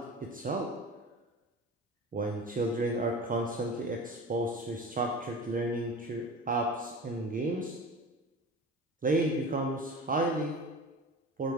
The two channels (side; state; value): both; normal; correlation 0.34